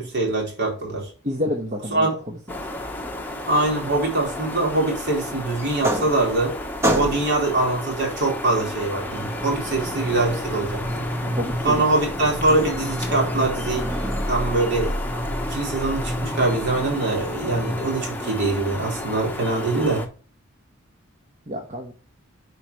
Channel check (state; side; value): normal; both; correlation 0.01